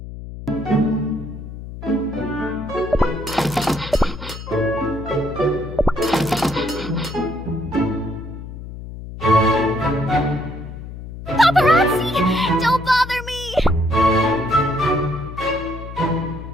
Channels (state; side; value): noise; left; hum, 11 dB below the sound